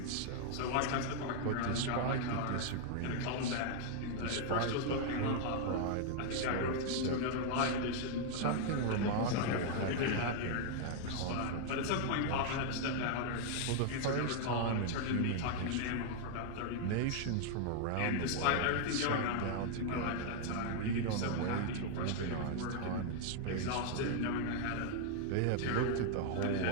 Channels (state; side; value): different; both; correlation 0.00